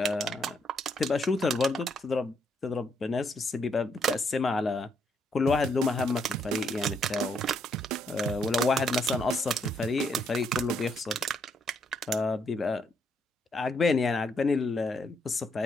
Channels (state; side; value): normal; both; correlation 0.74